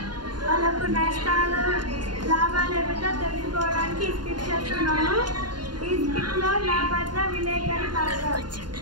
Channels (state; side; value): late; left; 0.71 ms